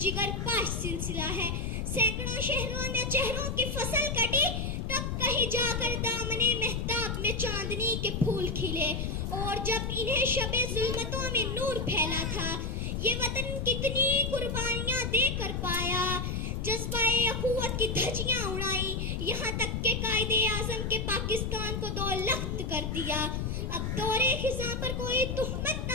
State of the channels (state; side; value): noise; left; rumble, 2 dB below the sound